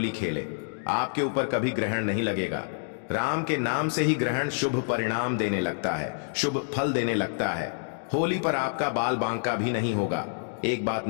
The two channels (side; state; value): right; silent; digital silence